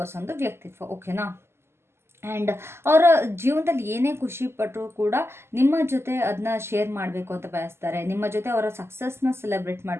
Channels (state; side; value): late; left; 0.12 ms